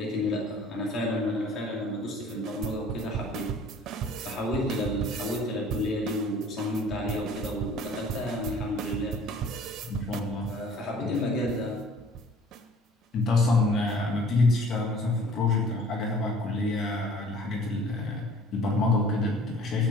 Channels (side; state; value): both; normal; correlation 0.50